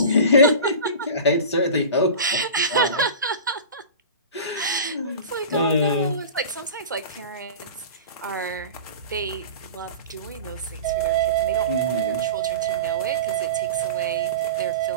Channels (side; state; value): both; inverted; correlation -0.33